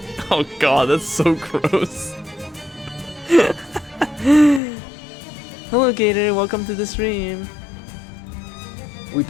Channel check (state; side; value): drops out; right; at 4.6 s